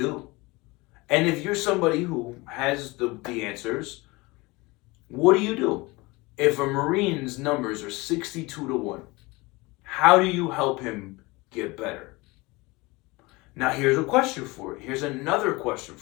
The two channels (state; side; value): quieter; right; 23.5 dB